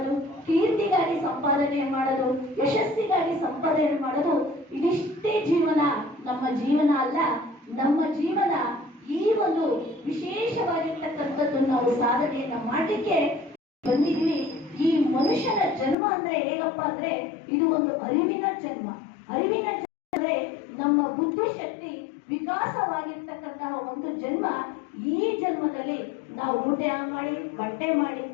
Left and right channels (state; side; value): drops out; right; at 16.0 s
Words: ಕೀರ್ತಿಗಾಗಿ ಸಂಪಾದನೆ ಮಾಡೋದು, ಯಶಸ್ಸಿಗಾಗಿ ಸಂಪಾದನೆ ಮಾಡೋದು, ಇದಿಷ್ಟೇ ಜೀವನ. ನಮ್ಮ ಜೀವನ ಅಲ್ಲ. ನಮ್ಮ ಜೀವನ ಈ ಒಂದು ವಿಶೇಷವಾಗಿರ್ತಕ್ಕಂಥದ್ದು ನಾವು ಸಾಧನೆಯನ್ನ ಮಾಡಲಿಕ್ಕೆ ಬಂದಿದ್ವಿ. ಈ ಮನುಷ್ಯನ ಜನ್ಮ ಅಂದ್ರೆ ಹೇಗಪ್ಪ ಅಂದ್ರೆ ಇದು ಒಂದು ಅರಿವಿನ ಜನ್ಮ. ಅರಿವಿನ ಜನ್ಮ ಅಂದ್ರೆ ನಮ್ಮ ಬುದ್ಧಿಶಕ್ತಿ ವಿಕಾಸವಾಗಿರ್ತಕ್ಕಂತಹ ಒಂದು ಜನ್ಮ. ಈ ಜನ್ಮದಲ್ಲಿ ನಾವು ಊಟ ಮಾಡಿ ಬಟ್ಟೆ ಮಾಡಿ